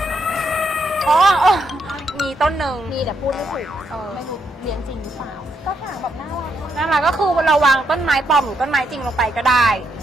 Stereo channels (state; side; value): normal; both; correlation 0.78